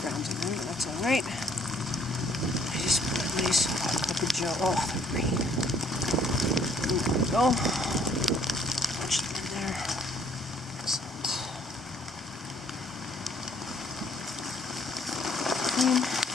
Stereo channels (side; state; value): both; normal; correlation 0.62